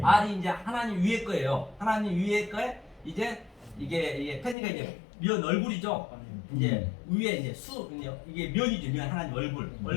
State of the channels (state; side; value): drops out; right; at 4.5 s